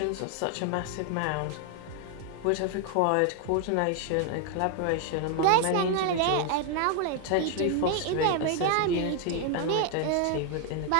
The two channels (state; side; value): different; both; correlation 0.00